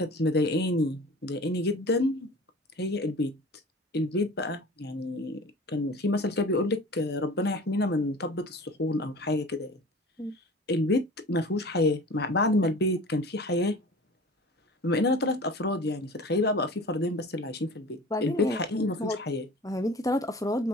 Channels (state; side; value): normal; both; correlation 0.41